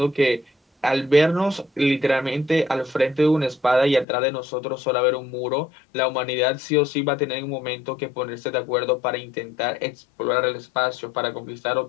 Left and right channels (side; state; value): right; drops out; at 4.0 s